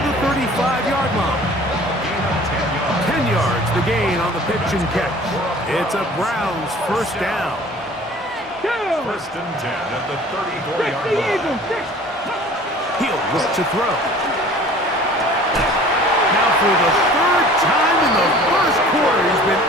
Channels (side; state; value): both; normal; correlation 0.47